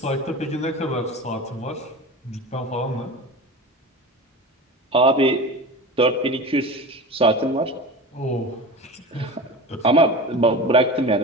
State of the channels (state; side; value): normal; both; correlation 0.31